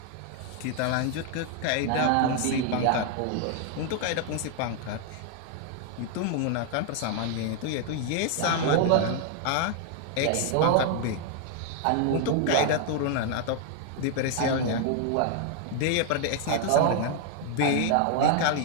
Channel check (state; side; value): different; both; correlation 0.00